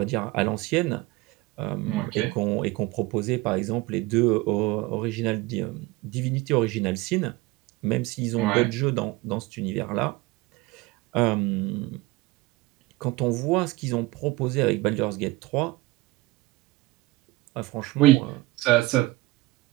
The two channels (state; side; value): quieter; left; 20.3 dB